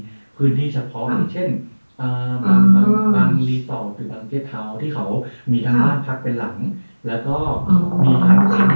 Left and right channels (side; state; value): both; inverted; correlation -1.00